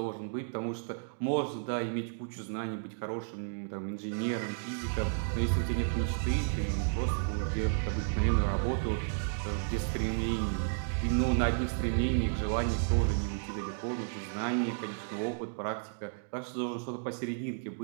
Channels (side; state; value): left; silent; digital silence